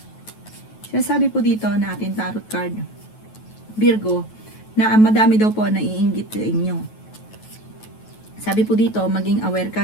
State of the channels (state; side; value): late; right; 9.2 ms